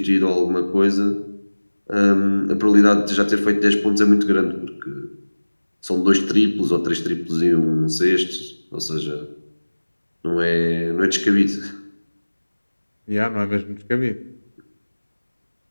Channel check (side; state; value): both; inverted; correlation -1.00